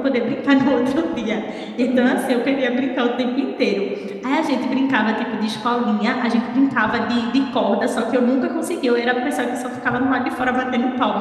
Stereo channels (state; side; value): identical; both; correlation 1.00